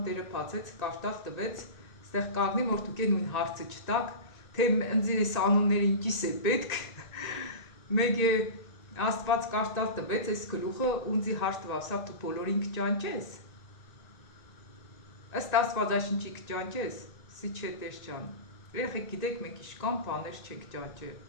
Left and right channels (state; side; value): late; right; 1.9 ms